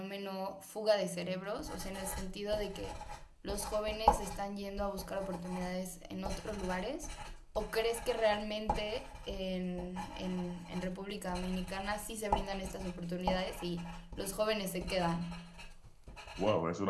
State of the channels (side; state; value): both; identical; correlation 1.00